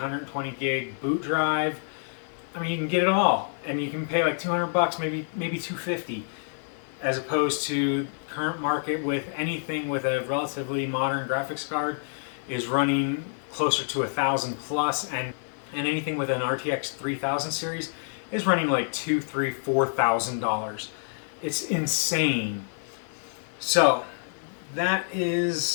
gig boot drive. I mean, you can get it all, and you can pay like 200 bucks, maybe 250, as opposed to current market with anything with a relatively modern graphics card is running closer to 1,000 plus, and anything with an RTX 3000 series is running like $2,000, $3,000, $4,000. It's insane. So that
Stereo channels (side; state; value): right; silent; 60 dB below the other